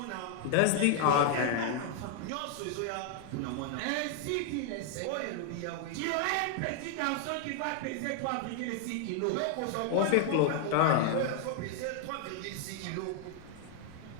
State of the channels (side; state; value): both; different; correlation 0.00